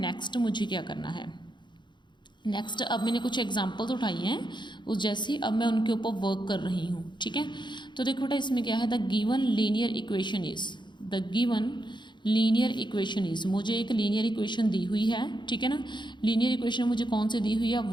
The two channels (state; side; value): late; right; 0.22 ms